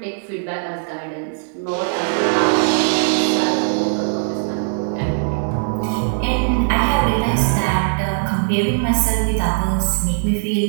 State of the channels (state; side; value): silent; left; 63 dB below the other